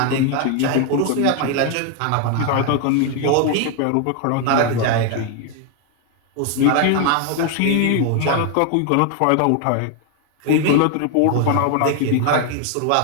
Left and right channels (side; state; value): both; different; correlation 0.01